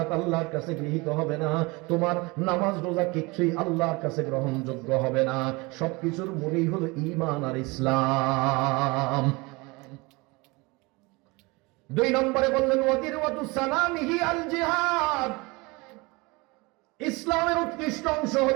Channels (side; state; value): left; quieter; 25.3 dB